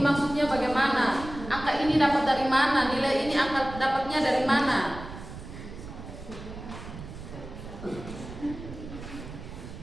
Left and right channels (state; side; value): noise; right; rumble, 12 dB below the sound